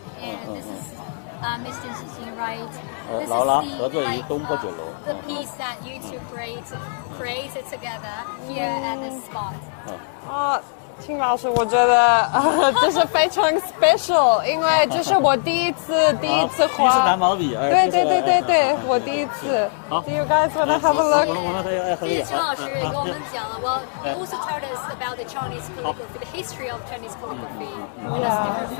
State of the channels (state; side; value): silent; right; digital silence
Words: and this is Mr. Xixing, right? This is 劳拉 the, 合作于 like, 东坡酒楼。 the piece that you two created together here at this spot. 啊，秦老师，我觉得这是非常 special，因为这是我第一次第一次画。拿毛笔，对，我第一次。好 Do you guys want to have a look? 谢谢秦老师给我们讲了。Well, he also told us about the Chinese calligraphy, the history of Chinese calligraphy, and it's different